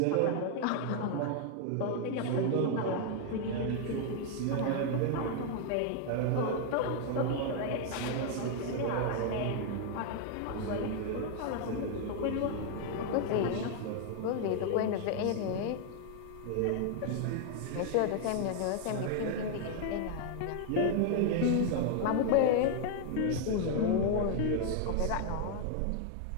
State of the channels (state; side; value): different; both; correlation 0.00